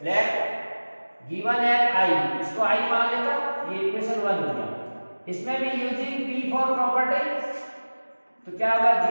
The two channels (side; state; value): both; inverted; correlation -1.00